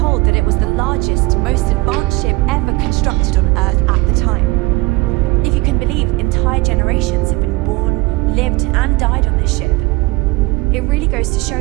that it was the largest, most advanced ship ever constructed on Earth at the time. If you can believe, entire generations have been born, lived, and died on this ship. It really goes to show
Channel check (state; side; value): quieter; left; 23.0 dB